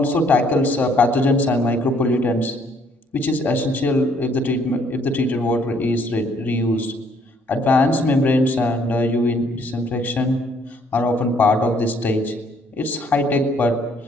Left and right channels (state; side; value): normal; both; correlation 0.65